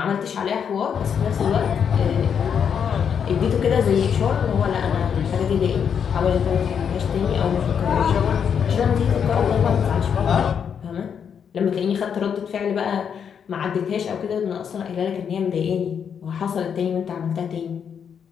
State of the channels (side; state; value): right; quieter; 7.5 dB